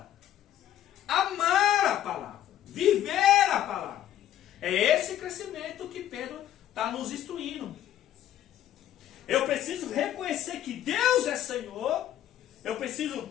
amar a palavra, viver a palavra. É esse crescimento que Pedro está nos instruindo. Eu preciso reconhecer que Deus é Senhor. Eu preciso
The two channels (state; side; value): quieter; right; 11.7 dB